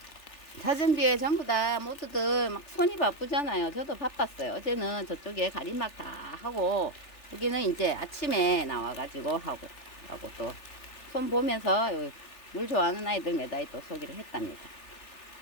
사전비에 전부 다 모두들 막 손이 바쁘잖아요. 저도 바빴어요. 어제는 저쪽에 가림막 다 하고 여기는 이제 아침에 나와가지고 하고 또 손 보면서 물 좋아하는 아이들 매다이 또 소개를 했답니다.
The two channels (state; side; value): late; right; 3.4 ms